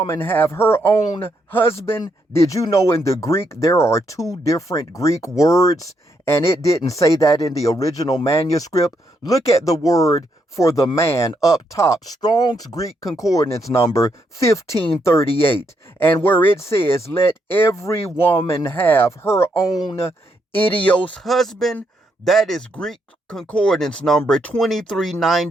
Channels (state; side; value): normal; both; correlation 0.77